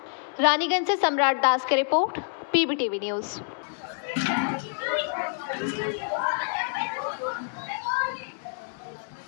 रानीगंज से सम्राट दास की रिपोर्ट, पीबीटीवी न्यूज। पीछे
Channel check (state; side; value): silent; right; digital silence